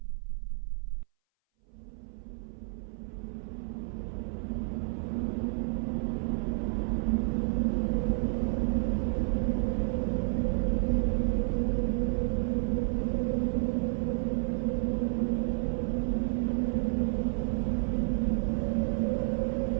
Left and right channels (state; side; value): silent; left; 58 dB below the other